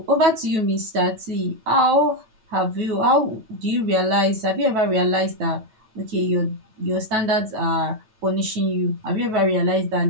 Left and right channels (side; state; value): left; late; 9.2 ms